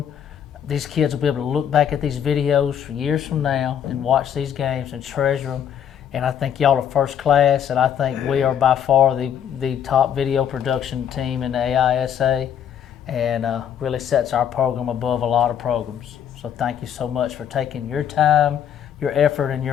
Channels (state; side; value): quieter; right; 9.1 dB